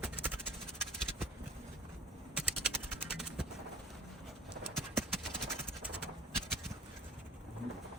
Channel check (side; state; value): both; normal; correlation 0.45